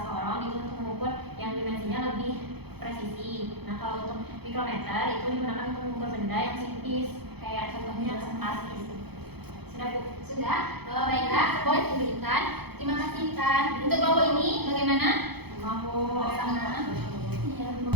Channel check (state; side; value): late; left; 0.97 ms